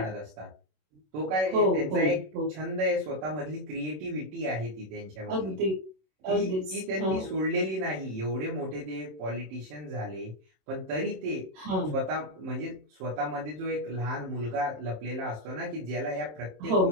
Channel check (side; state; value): left; late; 27 ms